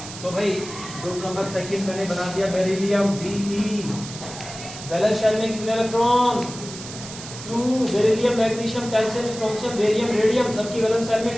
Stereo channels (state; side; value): noise; right; hiss, 12 dB below the sound